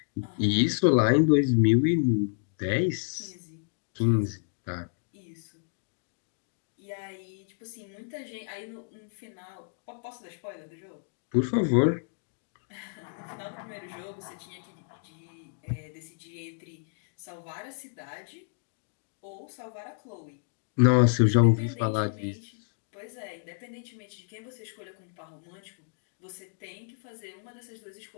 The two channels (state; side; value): silent; right; digital silence